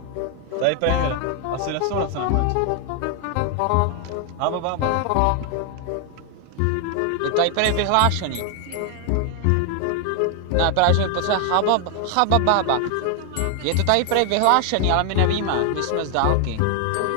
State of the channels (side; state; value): both; different; correlation 0.00